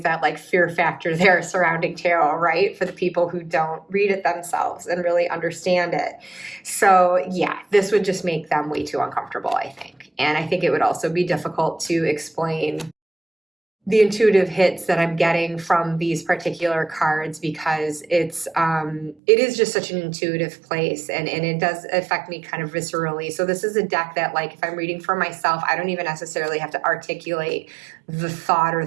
that like fear factor there surrounding tarot, right? For the people who don't read it themselves and really understand it. So yeah, this would just make them way too uncomfortable, I think. And I think it would also be difficult to explain the intuitive hits that I'm getting from these particular cards, because it is just such an intuitive place, and it does affect me kind of viscerally. So this is a deck that, like, if I'm reading for myself, I don't even necessarily have to articulate the thought or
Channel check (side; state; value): left; drops out; at 19.2 s